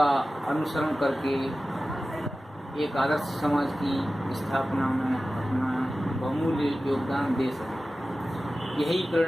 अनुसरण करके एक आदर्श समाज की स्थापना में अपना बहुमूल्य योगदान दे सके। यही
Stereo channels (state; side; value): normal; both; correlation 0.95